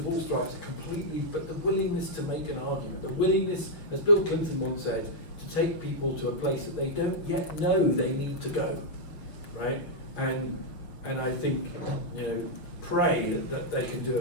all stripes are completely, but the willingness to make an argument, the willingness, as Bill Clinton once said, to take people to a place that they don't yet know they need to go, right? And and I think, pray that they can do a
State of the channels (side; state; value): right; late; 6.3 ms